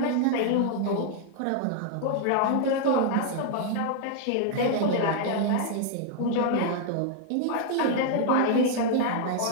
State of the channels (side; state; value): both; different; correlation -0.01